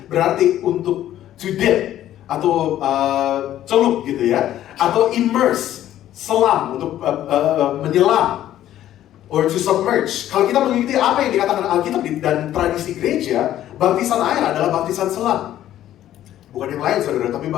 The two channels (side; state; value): right; quieter; 12.5 dB